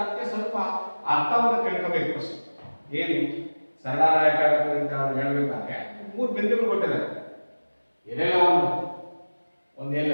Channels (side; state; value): both; inverted; correlation -1.00